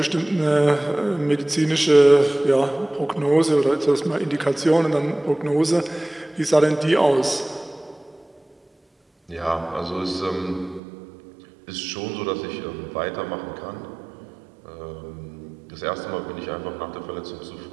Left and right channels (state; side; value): drops out; left; at 10.8 s